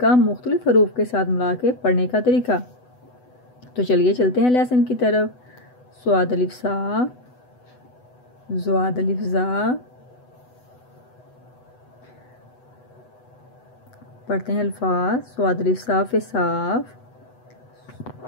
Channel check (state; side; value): late; right; 8.0 ms